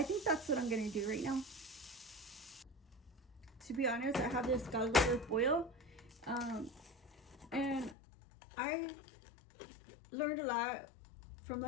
think that's what I'm going to do right now. To be honest, I have this gallbladder foil. And I learned a lot from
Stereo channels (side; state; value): right; drops out; at 8.0 s